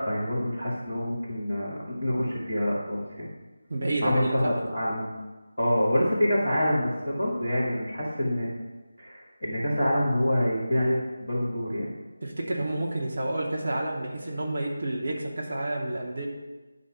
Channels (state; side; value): inverted; both; correlation -0.94